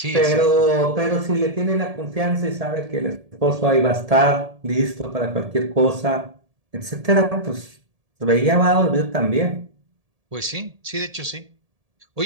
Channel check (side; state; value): left; late; 1.7 ms